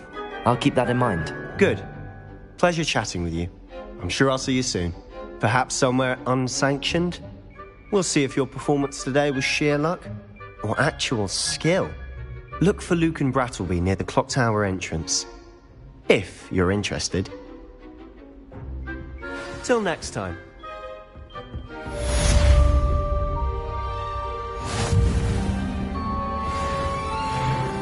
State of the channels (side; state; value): both; identical; correlation 1.00